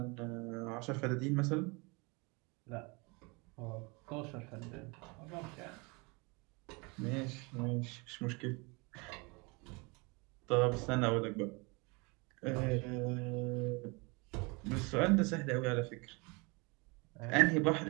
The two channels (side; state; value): left; quieter; 28.5 dB